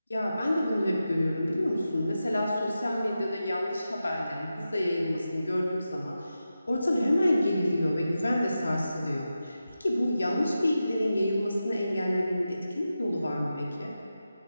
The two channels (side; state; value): both; inverted; correlation -0.91